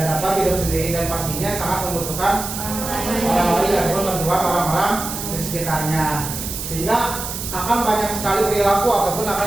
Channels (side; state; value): right; noise; hiss, 6 dB below the sound